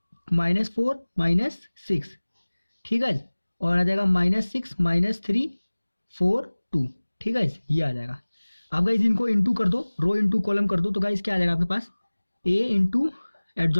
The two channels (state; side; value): inverted; both; correlation -1.00